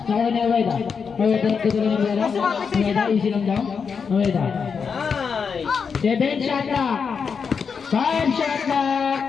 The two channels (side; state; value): right; quieter; 6.0 dB